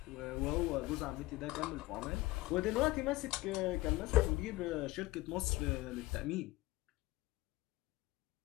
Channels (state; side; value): quieter; right; 19.2 dB